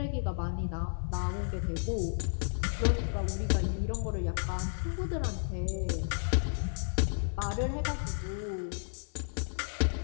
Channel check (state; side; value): silent; right; digital silence